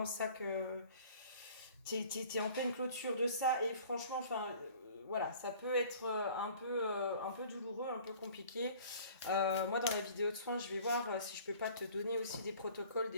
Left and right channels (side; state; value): both; inverted; correlation -0.49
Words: ça que. T'es en pleine clôture de ça. Et franchement, enfin. Voilà, ça peut être un peu douloureux, un peu compliqué. Moi, dans la vidéo de soins, je vais voir si je peux pas te donner aussi des protocoles,